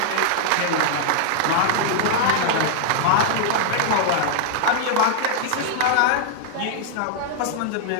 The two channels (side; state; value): both; different; correlation -0.01